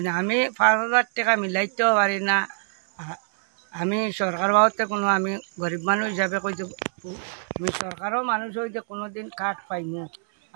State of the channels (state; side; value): silent; left; 62 dB below the other